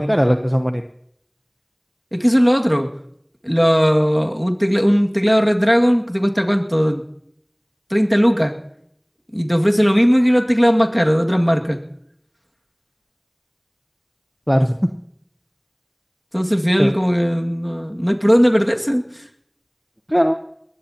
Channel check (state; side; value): identical; both; correlation 1.00